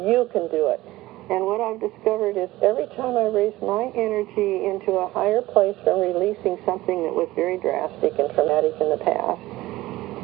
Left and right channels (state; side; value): quieter; left; 17.6 dB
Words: you can do it. And what I've discovered is every time I raise my energy into a higher place from releasing something that was very drastic and traumatic in the past,